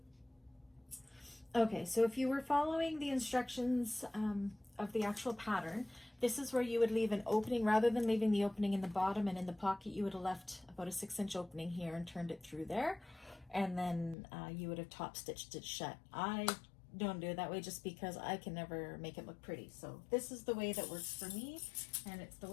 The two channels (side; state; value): right; drops out; at 14.2 s